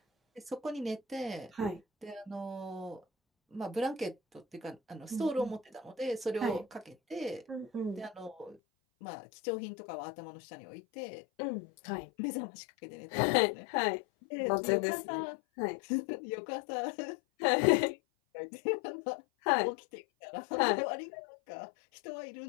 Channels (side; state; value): right; drops out; at 8.6 s